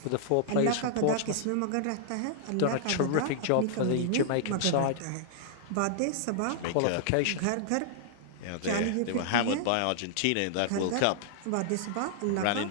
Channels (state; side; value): different; both; correlation -0.01